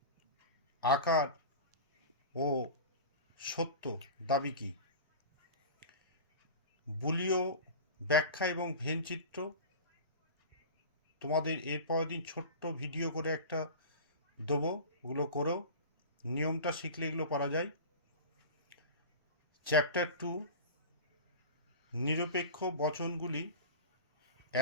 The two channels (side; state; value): both; inverted; correlation -0.32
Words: আকার ও সত্য দাবি কি, বুলীয় ব্যাখ্যা এবং ভেনচিত্র। তোমাদের এর পরের দিন ছোট্ট ভিডিও করে একটা দেবো, ওগুলো করো, নিয়মটা শিখলে এগুলো পারা যায়। চ্যাপ্টার 2 নিরপেক্ষ বচনগুলি